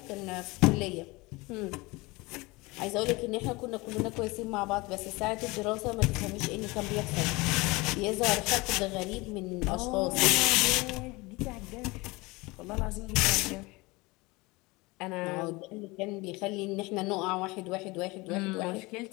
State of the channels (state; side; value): quieter; right; 23.5 dB